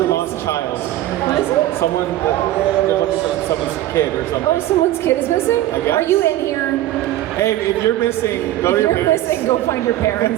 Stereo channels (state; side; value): quieter; left; 14.4 dB